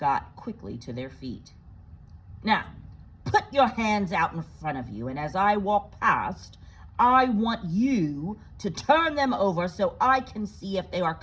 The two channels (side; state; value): both; identical; correlation 1.00